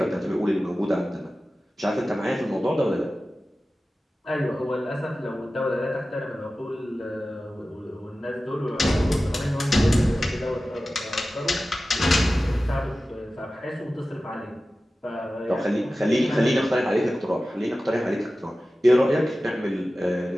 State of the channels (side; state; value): both; normal; correlation 0.95